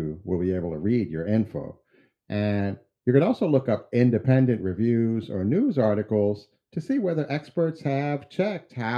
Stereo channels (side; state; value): both; identical; correlation 1.00